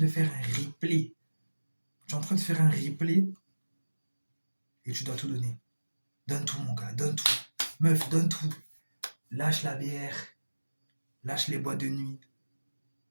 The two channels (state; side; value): inverted; both; correlation -1.00